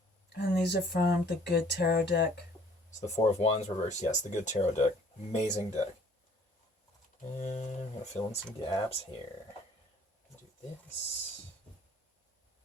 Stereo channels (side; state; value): both; normal; correlation 0.56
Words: And these are from the Good Tarot deck. So the Four of Wands reversed. Yes, the Good Tarot deck. Amazing deck. And I'm going to fill in some gaps here. Do this.